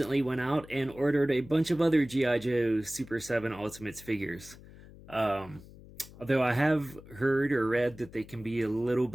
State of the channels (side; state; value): left; noise; hum, 19 dB below the sound